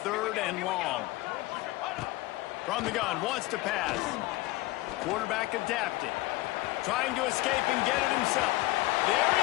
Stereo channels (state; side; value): quieter; right; 19.2 dB